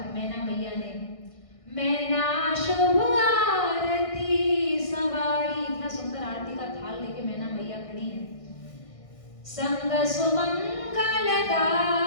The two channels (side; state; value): right; late; 1.6 ms